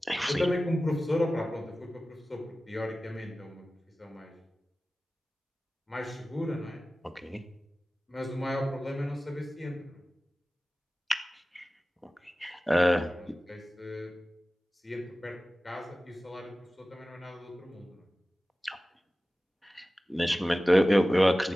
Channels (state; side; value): normal; both; correlation 0.96